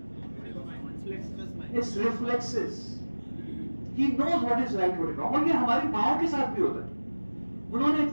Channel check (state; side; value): inverted; both; correlation -1.00